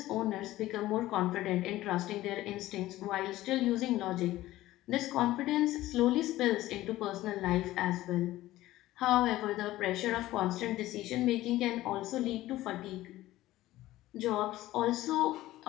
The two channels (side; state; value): right; quieter; 16.0 dB